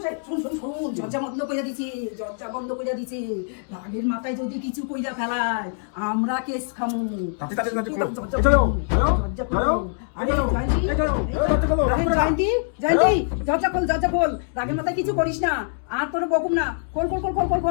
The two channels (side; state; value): right; silent; digital silence